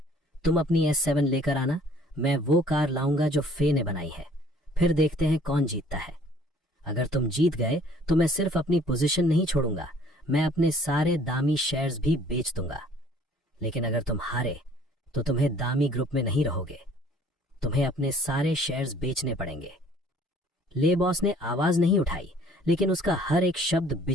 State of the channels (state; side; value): normal; both; correlation 0.55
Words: तुम अपनी S7 लेकर आना, मैं वो कार लाऊंगा जो फे ने बनाई है। फिर देखते हैं कौन जीतता है। अगर तुम जीत गए तो मैं सिर्फ अपनी पोजीशन नहीं छोड़ूंगा, मैं अपने सारे दामी शेयर्स भी बेच दूंगा। लेकिन अगर तुम हारे तो तुम्हें दामी ग्रुप में नहीं रहोगे, तुम्हें अपने सारे शेयर्स बेचने पड़ेंगे। ले बॉस ने आवाज नहीं उठाई, लेकिन उसका हर एक शब्द